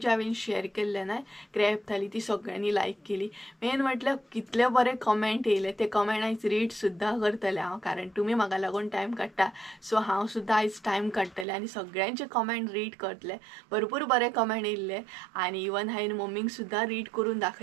हांवें शेअर केल्ले ना क्रॅब थाली, ती सगळ्यांनी लायक केली. मेन म्हटल्यार कितले बरे कमेंट येयले, ते कमेंट आयज रीड सुद्दां करतलें हांव, कारण तुम्ही म्हाका लागून टायम काडटा. सो हांव सुद्दां आयज टायम काडटलें आनी सगळ्यांचे कमेंट रीड करतलें. भरपूर बरे कमेंट येयल्ले आनी इवन हांवें मम्मीक सुद्दां रीड करून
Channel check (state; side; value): drops out; left; at 11.5 s